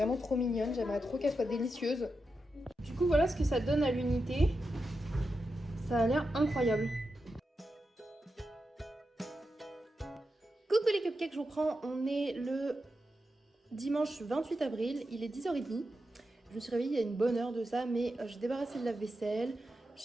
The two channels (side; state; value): both; normal; correlation 0.88